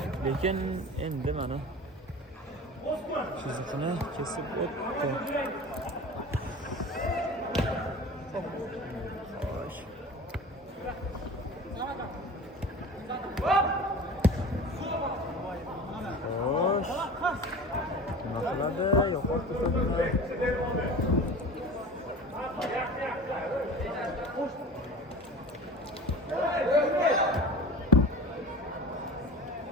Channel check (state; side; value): normal; both; correlation 0.36